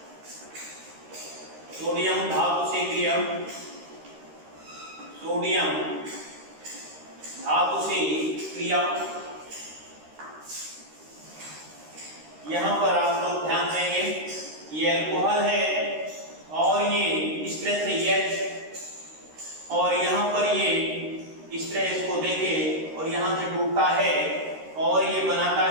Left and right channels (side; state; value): left; late; 13 ms